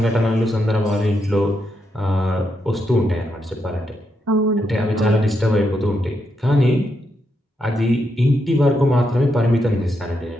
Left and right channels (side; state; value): both; normal; correlation 0.82